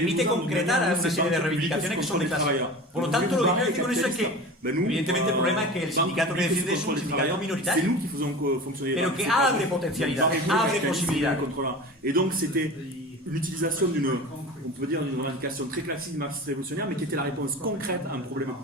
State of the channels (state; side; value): normal; both; correlation 0.34